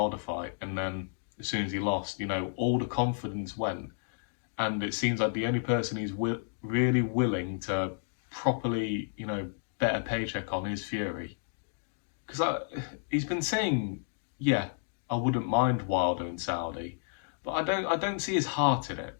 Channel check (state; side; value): silent; right; digital silence